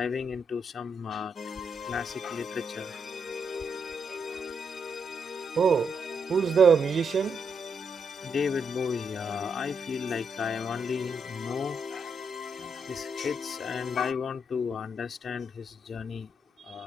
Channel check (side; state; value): both; normal; correlation 0.79